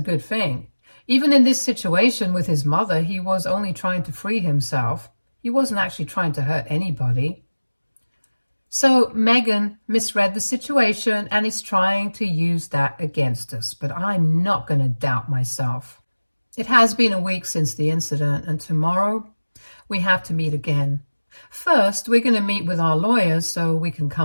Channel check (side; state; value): both; inverted; correlation -1.00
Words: good thing. Even in this situation with his mother, he was only trying to free himself. He wasn't actually trying to hurt anybody. So Megan misread the situation and is trying to use that against us, but I'm not going to doubt myself. It has been a week since the incident, and tomorrow we have to meet again. First, we're going to meet with our lawyers so we can